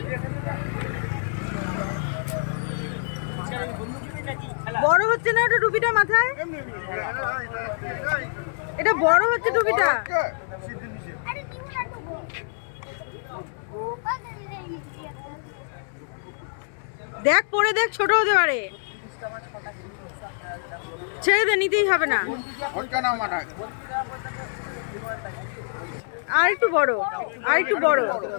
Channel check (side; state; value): right; silent; 61 dB below the other